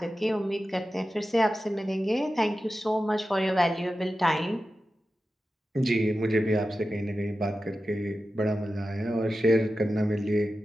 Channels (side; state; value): both; normal; correlation 0.93